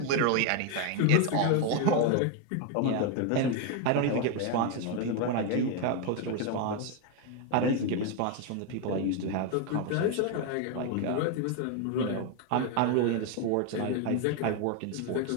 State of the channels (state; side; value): different; both; correlation 0.01